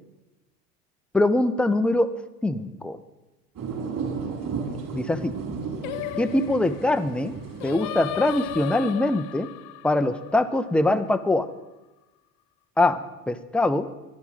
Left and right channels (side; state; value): both; normal; correlation 0.81